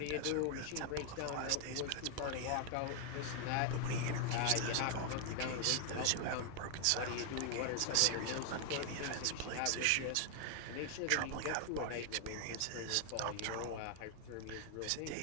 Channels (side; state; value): both; different; correlation 0.00